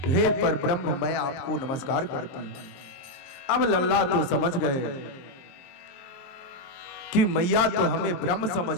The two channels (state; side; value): late; right; 22 ms